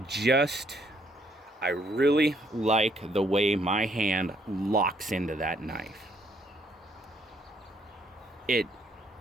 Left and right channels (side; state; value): both; normal; correlation 0.70